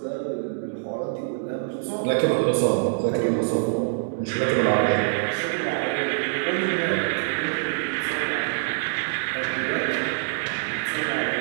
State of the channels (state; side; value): silent; left; 62 dB below the other